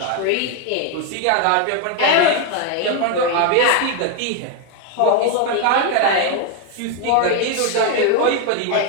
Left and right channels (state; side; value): different; both; correlation 0.01